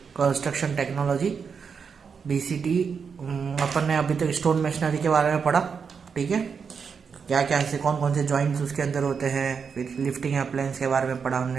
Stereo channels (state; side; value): quieter; left; 6.1 dB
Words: construction technology BCT. अपन ने अभी तक स्टोन मशीनरी के बारे में पढ़ा, ठीक है। क्या क्या ऐसे कौन कौन से जॉइंट्स उसके अंदर होते हैं, फिर लिफ्टिंग अप्लायंस के बारे में पढ़ा